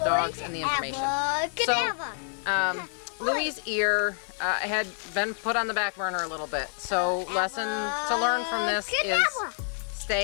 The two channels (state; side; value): silent; right; digital silence